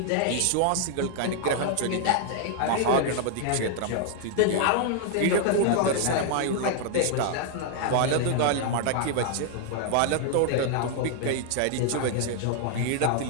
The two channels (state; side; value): different; both; correlation 0.00